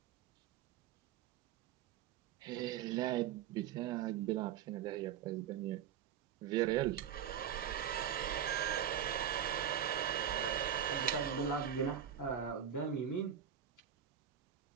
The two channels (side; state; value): left; quieter; 9.2 dB